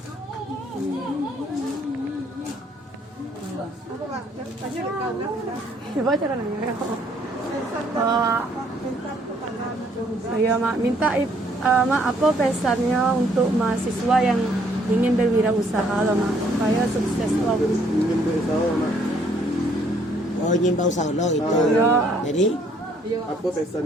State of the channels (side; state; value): both; normal; correlation 0.65